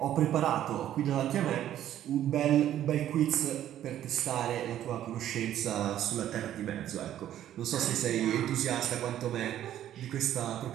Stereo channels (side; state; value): left; quieter; 11.7 dB